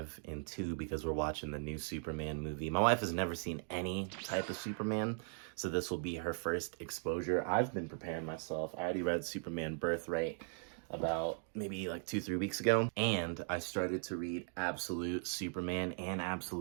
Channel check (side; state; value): left; silent; 52 dB below the other